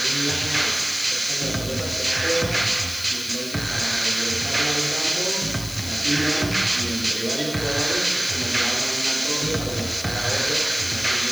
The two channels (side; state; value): left; noise; hiss, 12 dB below the sound